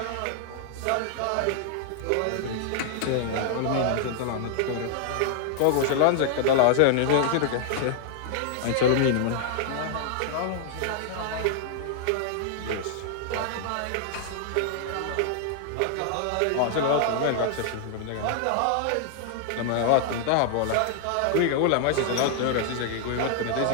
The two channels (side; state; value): both; different; correlation 0.00